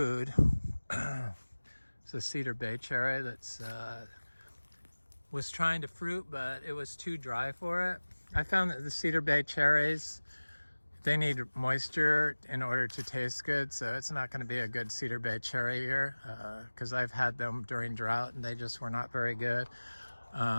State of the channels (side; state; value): both; inverted; correlation -1.00